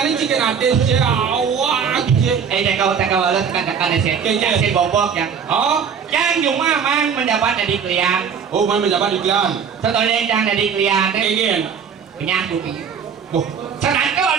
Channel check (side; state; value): left; quieter; 6.9 dB